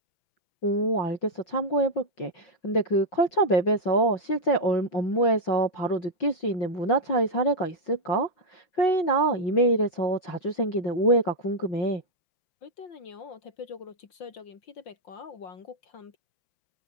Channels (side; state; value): right; late; 5.5 ms